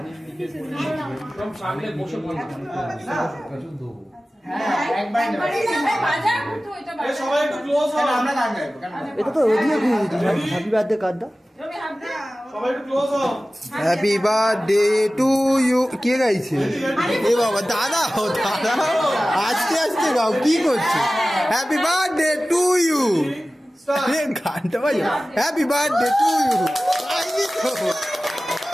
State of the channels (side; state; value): both; normal; correlation 0.96